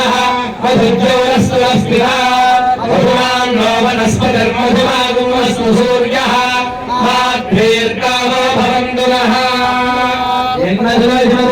मधुज्योरस्तुरस्तिरा मधुमान् नो वनस्पतिर्मधुमागुमस्तु सूर्यः माभ्येर्गावो भवन्तु नः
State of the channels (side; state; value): both; identical; correlation 1.00